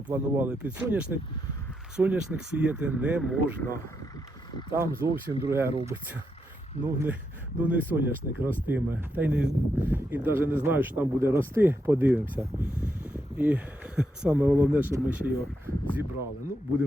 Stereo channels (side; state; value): both; normal; correlation 0.82